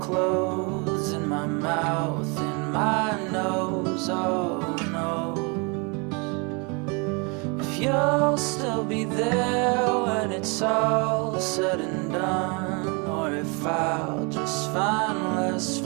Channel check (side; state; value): left; quieter; 31.8 dB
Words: in my mouth, in my nose. Oh no, if you'll still be there when it's all said and done, or if I'll just find less